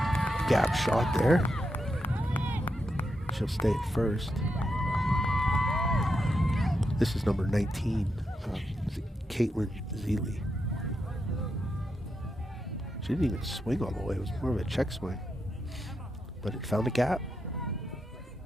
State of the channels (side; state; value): both; normal; correlation 0.84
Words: gap shot there. She'll stay at first. This is number 19, Caitlin Zeeley. She didn't even swing all the way. It was more of a check swing. But it found a gap.